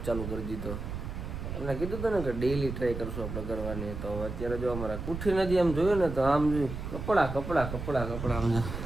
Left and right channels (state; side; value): noise; right; rumble, 6 dB below the sound